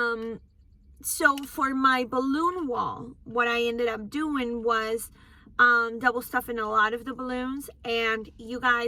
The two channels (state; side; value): identical; both; correlation 1.00